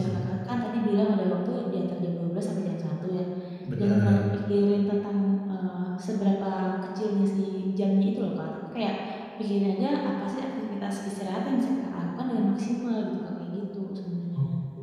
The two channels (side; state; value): both; identical; correlation 1.00